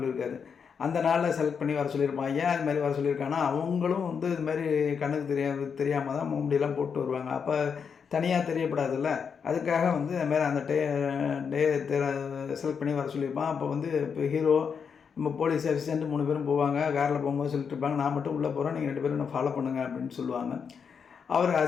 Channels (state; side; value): quieter; right; 6.5 dB